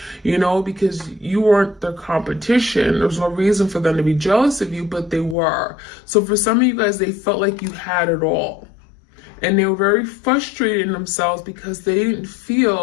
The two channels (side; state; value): right; drops out; at 5.4 s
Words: because you weren't their competition. There's no reason for them to be jealous of you, but they were. So for some of you guys, they felt like you had it all. And they were very frustrated in themselves because they didn't